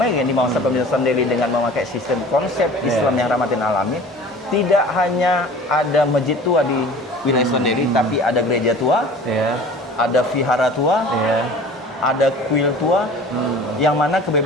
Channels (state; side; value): normal; both; correlation 0.43